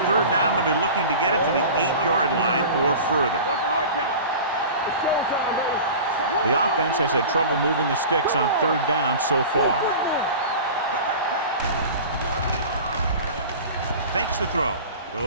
third down, they'll be looking to get it to the 8-yard line or further. The offense has had trouble moving the sticks on third down so far. Fakes the throw.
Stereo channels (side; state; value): both; inverted; correlation -0.36